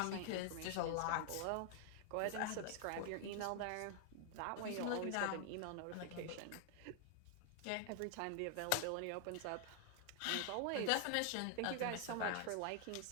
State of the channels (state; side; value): different; both; correlation 0.00